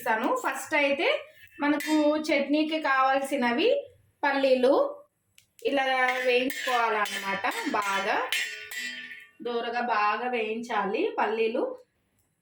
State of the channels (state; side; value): identical; both; correlation 1.00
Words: ఫస్ట్ అయితే మనకు చట్నీకి కావాల్సినవి పల్లీలు ఇలా వేయించుకోవాలన్నమాట. బాగా దూరగా బాగా వేయించాలి. పల్లీలు